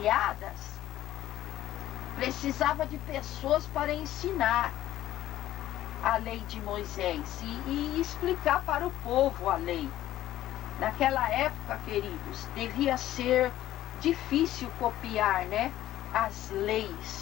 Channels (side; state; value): right; quieter; 13.7 dB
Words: precisava de pessoas para ensinar a lei de Moisés e explicar para o povo a lei. Naquela época, queridos, devia ser difícil copiar, as